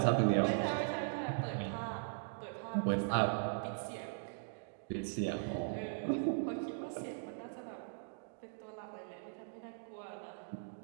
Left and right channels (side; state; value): left; silent; digital silence